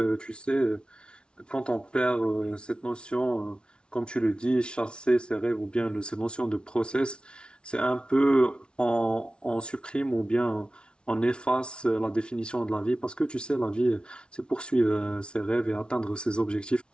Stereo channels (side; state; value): right; late; 0.057 ms